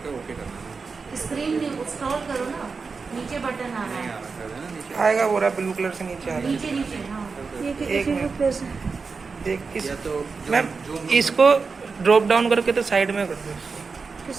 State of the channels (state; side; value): quieter; left; 4.8 dB